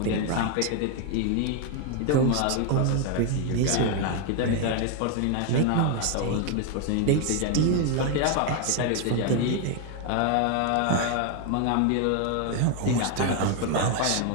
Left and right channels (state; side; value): different; both; correlation 0.01